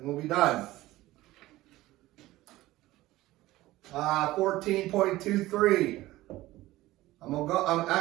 we'll be done. 14.23. I'm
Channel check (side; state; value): left; quieter; 17.2 dB